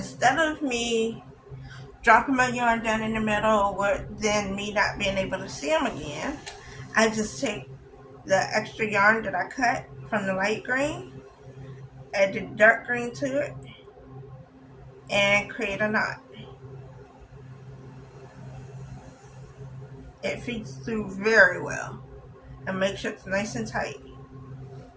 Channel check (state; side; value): identical; both; correlation 1.00